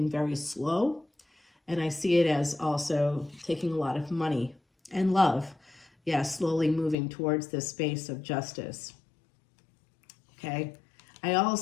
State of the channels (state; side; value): drops out; right; at 7.0 s